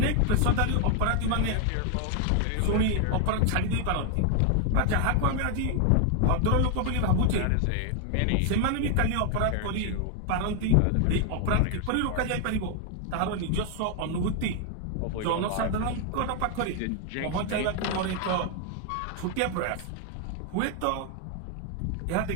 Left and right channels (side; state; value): both; different; correlation 0.00